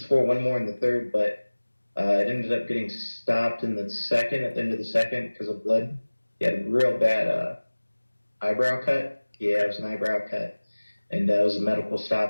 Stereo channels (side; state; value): both; inverted; correlation -1.00